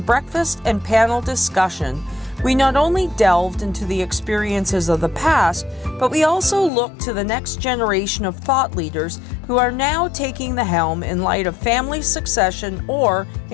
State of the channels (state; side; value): drops out; right; at 6.7 s